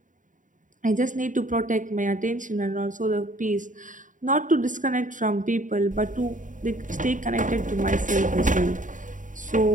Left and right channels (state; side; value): late; left; 0.37 ms